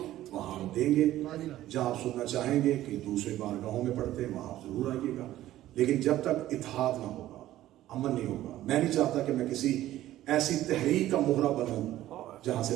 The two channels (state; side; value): quieter; left; 14.2 dB